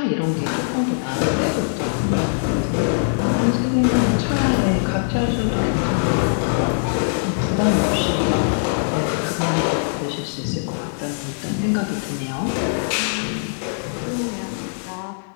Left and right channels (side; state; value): right; silent; digital silence